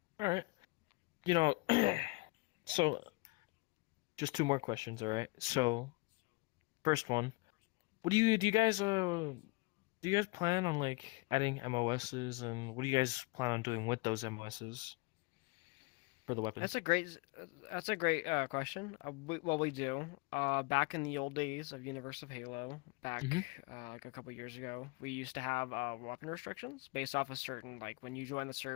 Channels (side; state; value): right; quieter; 26.5 dB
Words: All right. So just two more questions. All right. So first one, what do you guys plan on like adding MOSs, and what do you guys plan on doing with those MOSs for the weapons? That's a great question. We do. Back in the old days of Universe of Halo, back Mm-hmm. like a couple years ago, we used to have weapon restrictions based off a certain, like, when you join the